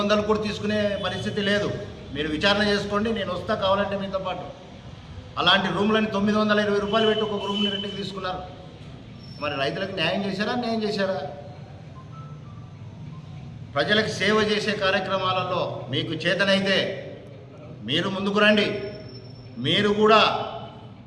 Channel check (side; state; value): both; identical; correlation 1.00